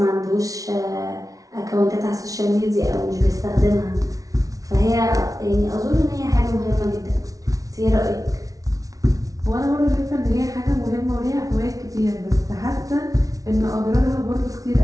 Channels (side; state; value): left; late; 0.17 ms